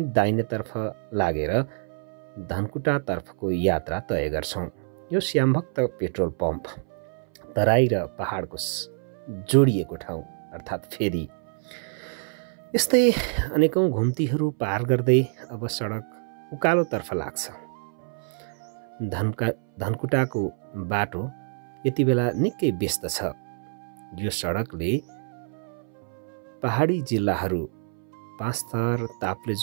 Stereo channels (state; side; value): silent; left; 61 dB below the other